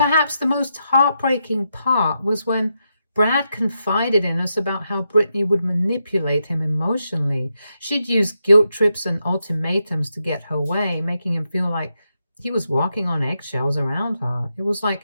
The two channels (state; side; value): inverted; both; correlation -0.84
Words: the most heartbreaking part was when Brad confided in us about how Brittany would manipulate him emotionally. She'd use guilt trips and ultimatums to get her way, making him feel like he was walking on eggshells around her. It was